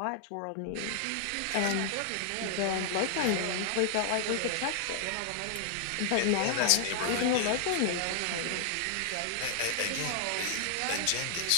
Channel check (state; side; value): different; both; correlation 0.00